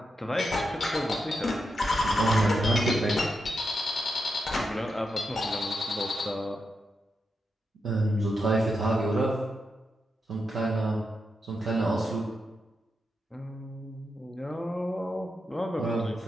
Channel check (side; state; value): both; normal; correlation 0.85